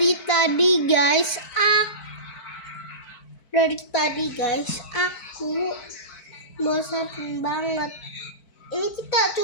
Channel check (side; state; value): right; late; 4.5 ms